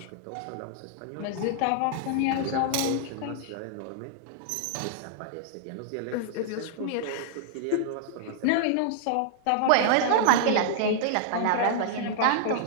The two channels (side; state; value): both; different; correlation -0.01